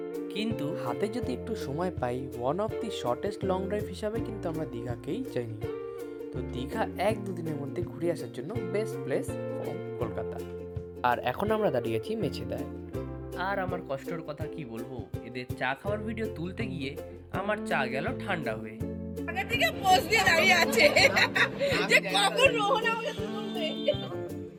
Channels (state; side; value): identical; both; correlation 1.00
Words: কিন্তু হাতে যদি একটু সময় পাই, one of the shortest long drive হিসাবে কিন্তু আমরা দীঘাকেই চাইনি। তো দীঘা 1-2 দিনের মধ্যে ঘুরে আসার জন্য বেস্ট প্লেস ফ্রম কলকাতা। আর এখন আমরা দাঁড়িয়েছি মেছেদায়। আর আমার কষ্টের কথা কি বলবো, এদের চা খাওয়ার ভিডিও তুলতে গিয়ে আমার চা গেল ঠান্ডা হয়ে। আগে থেকে পোজ দিয়ে দাঁড়িয়ে আছে যে কখন রোহন আমাকে তুলবে।